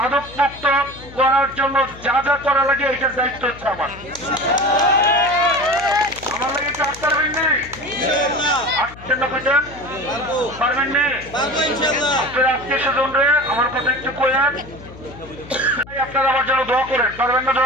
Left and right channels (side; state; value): left; noise; hum, 18 dB below the sound